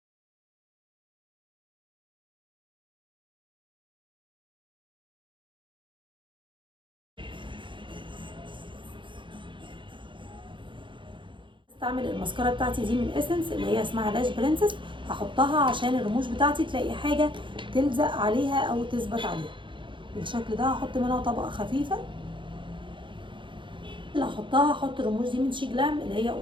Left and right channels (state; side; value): late; left; 0.24 ms